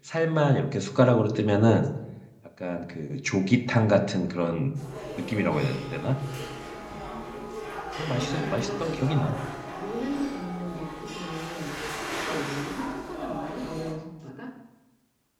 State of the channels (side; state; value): both; identical; correlation 1.00